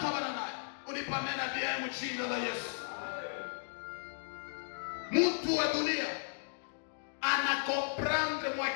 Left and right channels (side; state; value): right; silent; digital silence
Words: bananaye. Unipamena bien mjina la Yesu. Mtu wa dunia anakomprendre